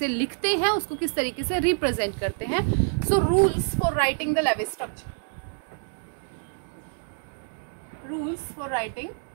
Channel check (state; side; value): silent; left; digital silence